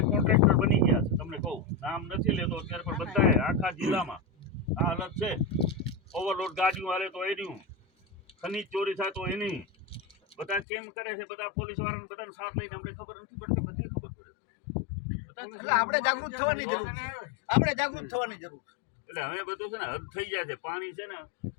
કોન્ટ્રાક્ટર બની ગયા છે. તમને કહું, નામ નથી લેતો અત્યારે, પણ બધા આખા જિલ્લામાં આ હાલત છે. ઓવરલોડ ગાડીઓ હાલે તો એની, ખનીજ ચોરી થાય તો એની, બધા કેમ કરે છે, બધા પોલીસ વાળાને બધાનો સાથ લઈને અમને ખબર નથી પડતી, બધી ખબર પડે. આપણે જાગૃત થવાની જરૂર છે, આપણે જાગૃત થવાની જરૂર. એટલે હવે બધું છે ને હદ થઈ જાય છે. પાણી છે ને,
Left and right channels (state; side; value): drops out; right; at 10.7 s